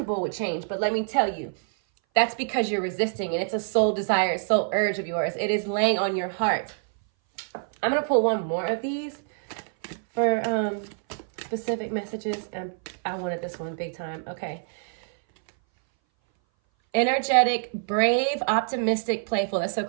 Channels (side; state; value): left; silent; 59 dB below the other